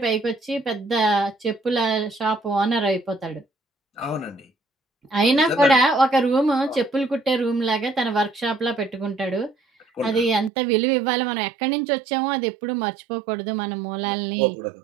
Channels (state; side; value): drops out; left; at 10.5 s